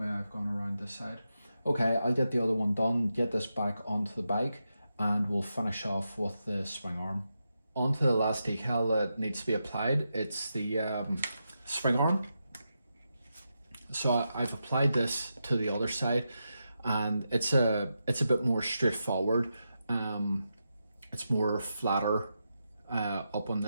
I've gone around this side. Okay, I'll get the other one done, get this back onto the bike, and we'll finish off with the swing arm. Onto the last decal that needs to be applied, it's the swing arm. So I've applied this to the other side, and it's a bit more straightforward. It's more flatter up on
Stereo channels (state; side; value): inverted; both; correlation -0.87